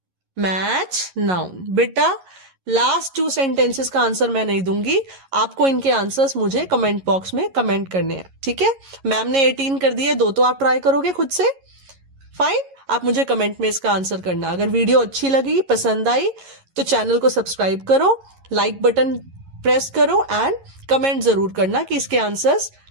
मैच नाउन। बेटा लास्ट 2 सेंटेंसेस का आंसर मैं नहीं दूंगी, आपको इनके आंसर्स मुझे कमेंट बॉक्स में कमेंट करने हैं। ठीक है, मैम ने 18 कर दिए, 2 तो आप ट्राई करोगे खुद से। फाइन, आप मुझे कमेंट में इसका आंसर करना। अगर वीडियो अच्छी लगी, पसंद आई, तो चैनल को सब्सक्राइब करो, लाइक बटन प्रेस करो एंड कमेंट जरूर करना कि इसके आंसर्स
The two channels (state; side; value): late; left; 11 ms